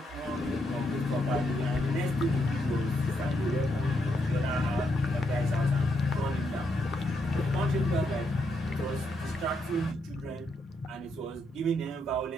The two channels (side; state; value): both; normal; correlation 0.79